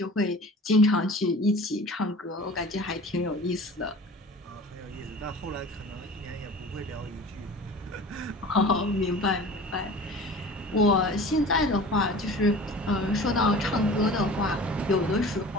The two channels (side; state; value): both; normal; correlation 0.41